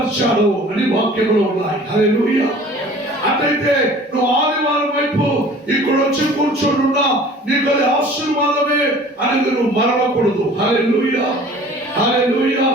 అని వాక్యములో ఉన్నాయి. హల్లెలూయా. అటైతే నువ్వు ఆదివారం వైపు ఇక్కడ వచ్చి కూర్చోనున్నా నీకు అది ఆశీర్వాదమే అని నువ్వు మరవకూడదు. హల్లెలూయా, హల్లెలూయా.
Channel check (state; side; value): normal; both; correlation 0.47